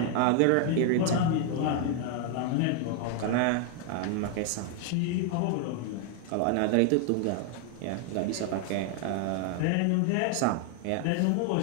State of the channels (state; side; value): different; both; correlation 0.00